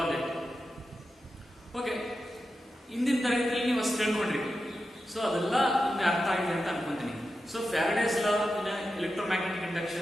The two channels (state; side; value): normal; both; correlation 0.90